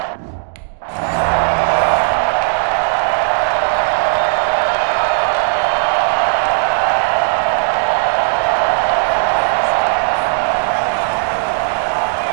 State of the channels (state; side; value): silent; left; digital silence